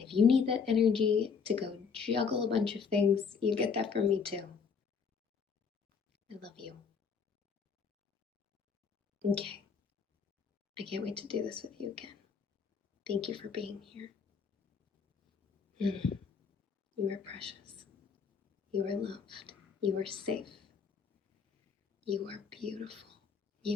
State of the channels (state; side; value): quieter; right; 5.9 dB